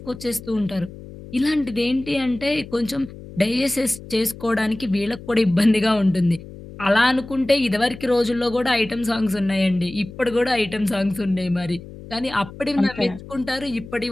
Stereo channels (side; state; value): left; noise; hum, 15 dB below the sound